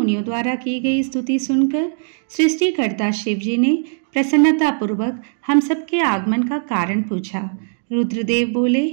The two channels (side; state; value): left; silent; digital silence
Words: द्वारा की गई स्तुति सुनकर सृष्टिकर्ता शिव जी ने प्रसन्नता पूर्वक हम सबके आगमन का कारण पूछा। रुद्रदेव बोले,